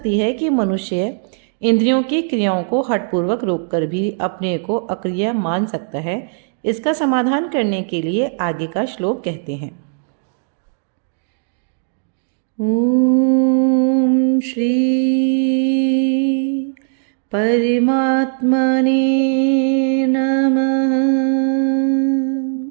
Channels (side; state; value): left; silent; digital silence